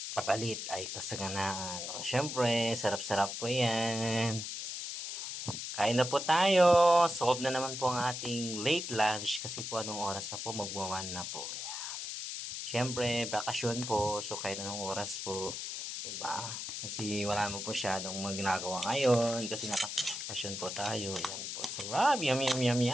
kapalit ay kasaganaan. O, syempre, sarap-sarap po yan. Kain na po tayo. Solve na naman po ang ating late lunch kasi po anong oras na po? Magwa-1 na po. Siyempre, bakasyon po. So, kahit anong oras po. Diba? Kasi wala mo po masyadong ginagawa ngayon. Kasi nakabakasyon po tayo. Yan po. Sarap. Yum, yum, yum,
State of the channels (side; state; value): left; noise; hiss, 6 dB below the sound